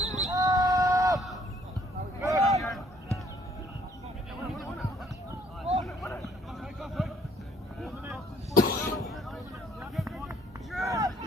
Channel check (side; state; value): both; normal; correlation 0.63